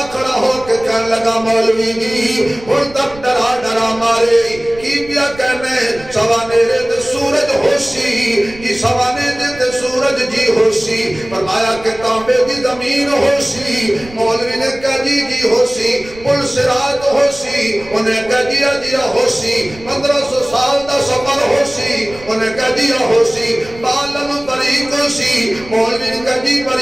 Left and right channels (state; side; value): noise; right; rumble, 19 dB below the sound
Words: کھڑا ہو کے کہنے لگا مولوی جی ہن تک ڈرا ڈرا مارے کی پیا کہنے سوانے دے سورج ہو سی یہ سوانے دے سورج جی ہو سی فرمایا کہ تانبے دی زمین ہو سی مولوی نے کہا جی ہو سی پل صراط ہو سی انہیں کہا جی ہو سی 1500 سال دا سفر ہو سی انہیں کہا دیا ہو سی بالن بریک ہو سی مولوی نے کہا جی